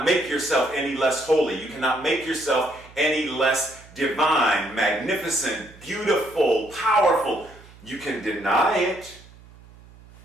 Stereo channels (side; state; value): right; noise; hum, 23 dB below the sound